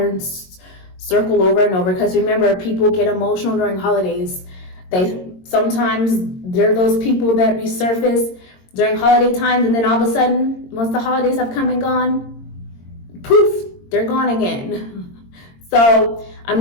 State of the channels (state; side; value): late; right; 22 ms